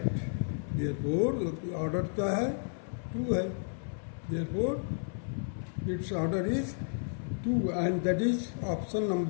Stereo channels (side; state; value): right; silent; 56 dB below the other